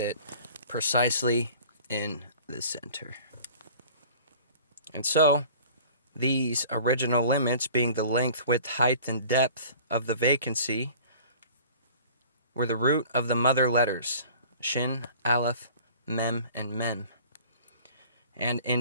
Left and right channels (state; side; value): inverted; both; correlation -0.46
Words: precisely in the center. And so, these original limits, being the length, width, height, and depth of the vacancy, were the root of the mother letters, Shin, Aleph, Mem, and Mem. And